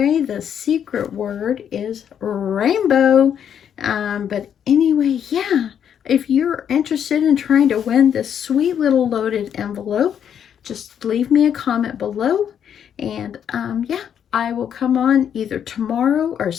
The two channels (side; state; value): right; quieter; 8.7 dB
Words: the secret word is rainbow. But anyway, yeah, if you're interested in trying to win this sweet little loaded envelope, just leave me a comment below. And yeah, I will come on either tomorrow or